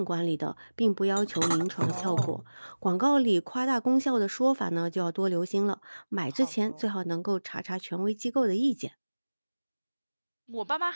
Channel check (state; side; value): inverted; both; correlation -1.00